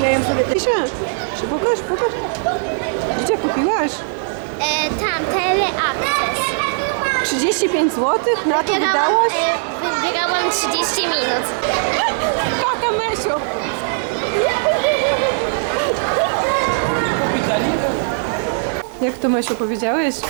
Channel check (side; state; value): left; silent; digital silence